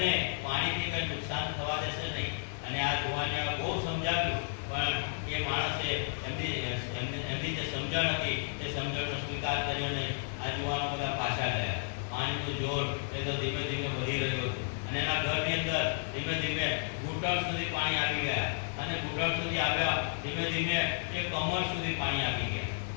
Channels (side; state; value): right; silent; digital silence